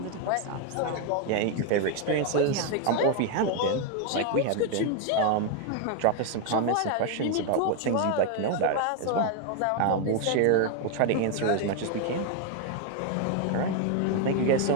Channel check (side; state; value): both; different; correlation 0.01